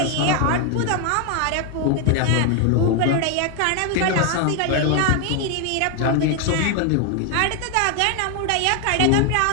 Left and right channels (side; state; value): both; different; correlation 0.01